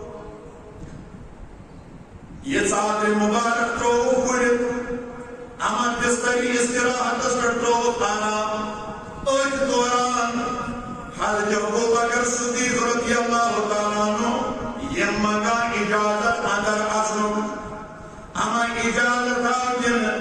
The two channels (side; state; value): both; identical; correlation 1.00